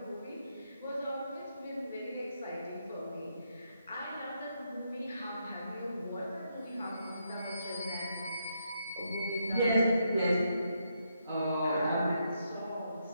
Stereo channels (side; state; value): both; inverted; correlation -0.79